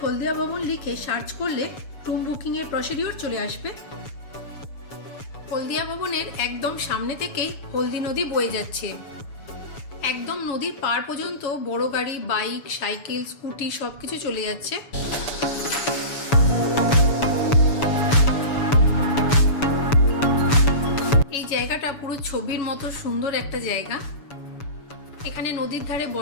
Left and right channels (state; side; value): late; right; 7.0 ms